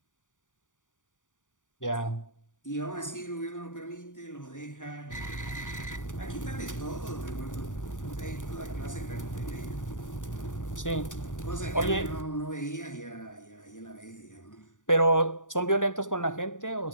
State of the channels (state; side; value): late; right; 0.87 ms